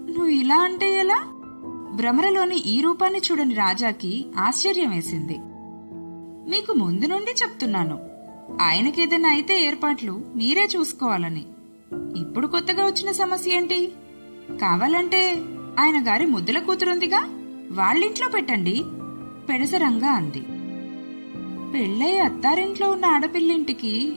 నువ్వు ఇలా అంటే ఎలా? భ్రమరలోని ఈ రూపాన్ని చూడని రాజాకి ఆశ్చర్యం వేసింది. మీకు ముందు నుండి చెప్తున్నాను, ఆయనకేదైనా అయితే ఏర్పాట్లు మీరే చూసుకోవాలని. ఇప్పుడు కొత్తగా వచ్చిన సమస్య ఏంటి? కావాలంటే ఆయన గారి ముద్దుల కూతురుందిగా, వాళ్ళింట్లో పెట్టండి పెడసరంగా అంది. పెళ్ళై అత్తారింట్లో ఉన్న ఆడపిల్లింటికి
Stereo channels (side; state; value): both; inverted; correlation -1.00